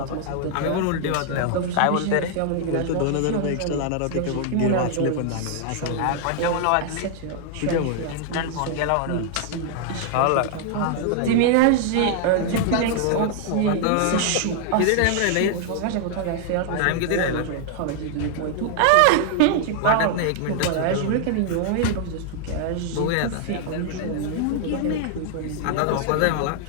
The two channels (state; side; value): different; both; correlation 0.00